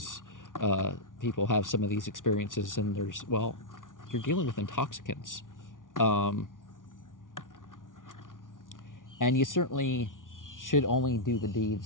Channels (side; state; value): right; late; 0.88 ms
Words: people have some of these experiences, and you're dealing with intoxicants. And you certainly should only do the